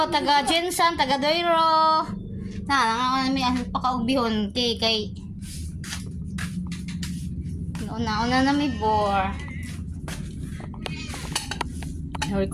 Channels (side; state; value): both; identical; correlation 1.00